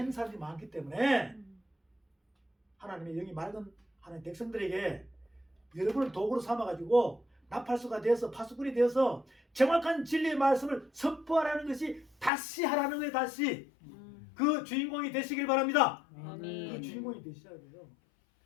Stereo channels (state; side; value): drops out; right; at 12.3 s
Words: 사람들이 많기 때문에 하나님의 영이 맑은 하나님 백성들에게 여러분을 도구로 삼아가지고 나팔수가 되어서 파수꾼이 되어서 정확한 진리의 말씀을 선포하라는 것이 다시 하라는 거예요. 다시 그 주인공이 되시길 바랍니다. 아멘. 그 주인공이 되셔야 돼요.